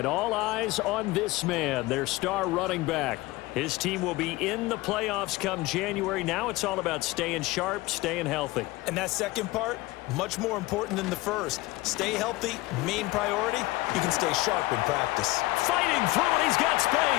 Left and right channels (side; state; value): right; quieter; 20.1 dB